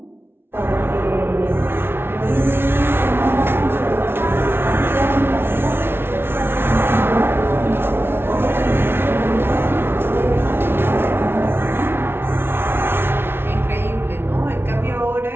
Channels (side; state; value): left; late; 0.11 ms